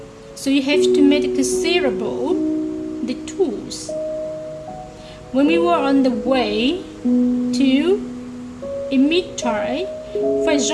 so you have to make considerable detours. When we were on the way to imitate, for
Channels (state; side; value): identical; both; correlation 1.00